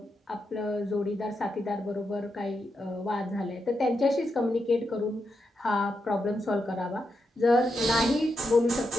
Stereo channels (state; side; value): normal; both; correlation 0.85